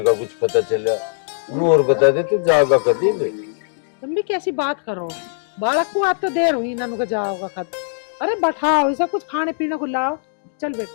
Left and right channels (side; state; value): right; silent; digital silence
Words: का कुछ पता चला, और बता दे तू जाएगा कभी भी? तुम भी कैसी बात करो, बालक को आज तो देर हुई, नानू का जाओगा कद। अरे बैठाओ, ऐसा कुछ खाने पीने को लाओ। चल